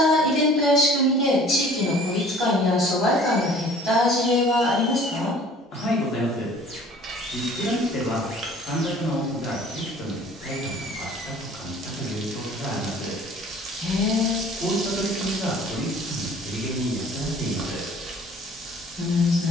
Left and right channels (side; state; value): both; normal; correlation 0.50